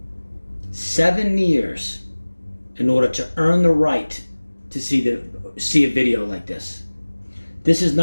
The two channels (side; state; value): both; inverted; correlation -1.00